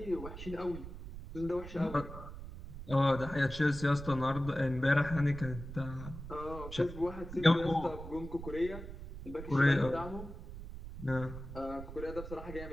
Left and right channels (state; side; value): noise; right; rumble, 11 dB below the sound